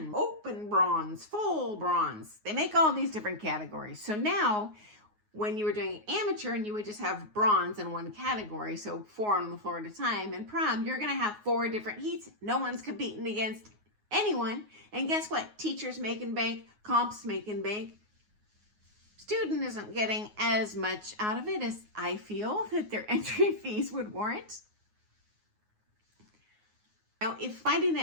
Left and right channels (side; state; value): left; late; 9.5 ms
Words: open bronze, full bronze. They make all these different categories. So now when you were doing amateur and you would just have bronze in one category, so 4 on the floor at a time, in prom, you're going to have 4 different heats. No one's competing against anyone. And guess what? Teachers making bank, comps making bank. Student isn't getting as much out of it as I feel that their entry fees would warrant. Now, if finding